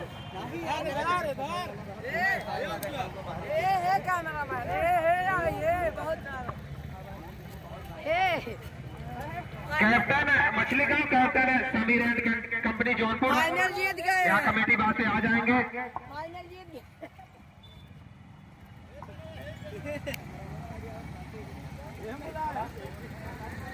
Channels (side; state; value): both; identical; correlation 1.00